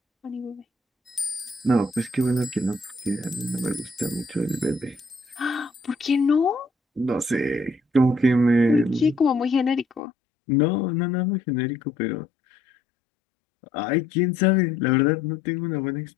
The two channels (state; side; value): drops out; right; at 10.0 s